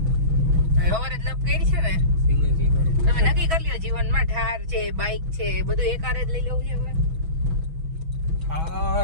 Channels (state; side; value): late; left; 6.2 ms